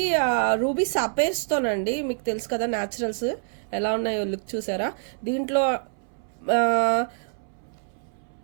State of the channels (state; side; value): silent; left; 61 dB below the other